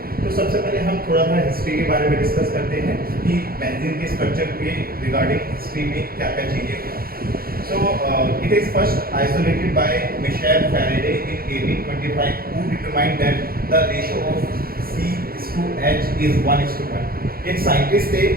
तो सबसे पहले हम थोड़ा सा हिस्ट्री के बारे में डिस्कस करते हैं कि बेंजीन के स्ट्रक्चर के रिगार्डिंग हिस्ट्री में क्या क्या चीज़ें हुआ। So it is first isolated by Michel Faraday in 1825, who determined that the ratio of C/H is 1:1। एक साइंटिस्ट थे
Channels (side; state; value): left; late; 0.43 ms